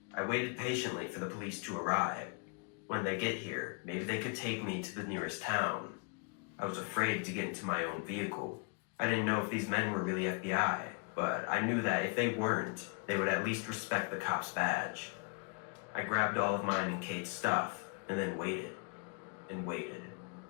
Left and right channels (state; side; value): quieter; right; 36.0 dB